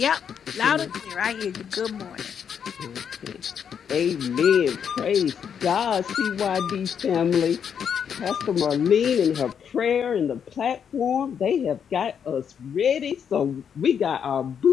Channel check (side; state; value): right; quieter; 7.7 dB